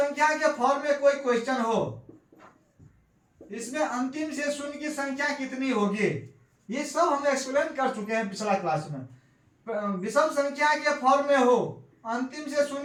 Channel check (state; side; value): identical; both; correlation 1.00